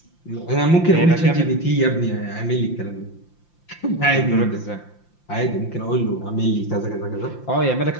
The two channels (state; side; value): late; right; 5.8 ms